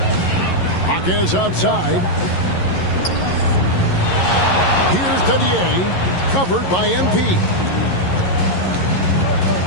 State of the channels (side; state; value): right; late; 11 ms